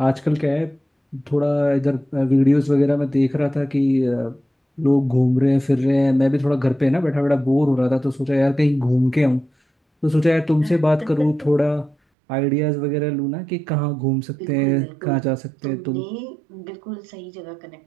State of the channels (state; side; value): drops out; left; at 12.0 s